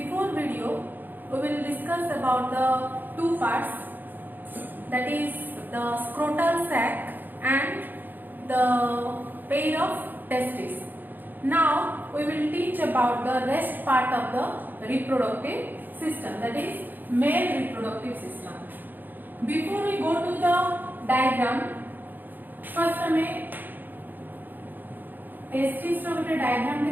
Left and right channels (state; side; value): late; left; 0.089 ms